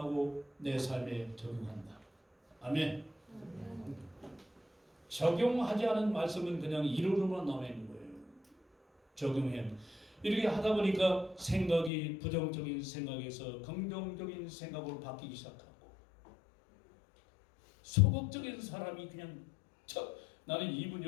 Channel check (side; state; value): right; drops out; at 11.9 s